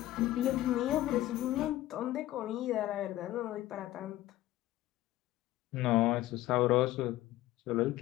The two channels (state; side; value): quieter; right; 15.5 dB